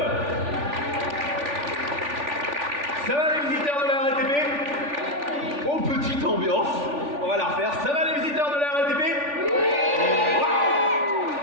Ça va les visiteurs de la RATP? Oh, petite ambiance. On va la refaire. Ça va les visiteurs de la RATP? Oui.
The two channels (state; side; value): late; left; 3.4 ms